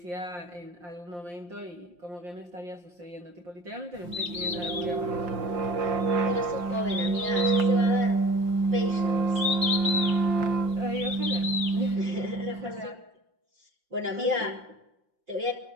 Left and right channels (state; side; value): late; left; 5.7 ms